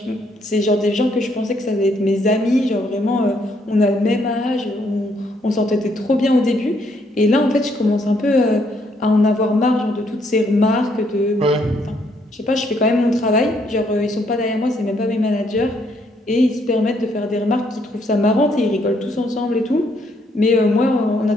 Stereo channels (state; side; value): normal; both; correlation 0.71